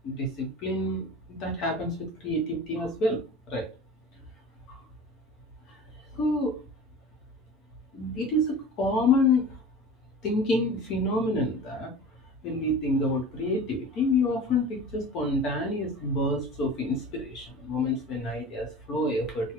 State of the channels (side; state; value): both; normal; correlation 0.37